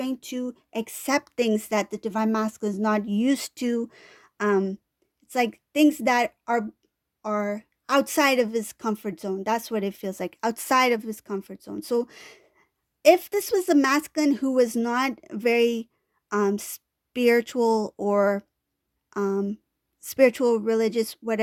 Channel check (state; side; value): identical; both; correlation 1.00